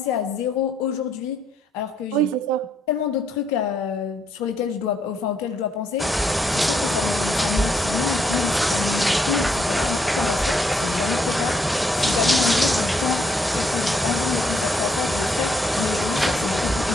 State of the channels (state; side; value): normal; both; correlation 0.72